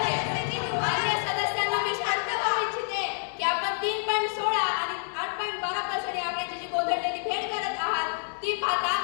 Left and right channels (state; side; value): silent; right; digital silence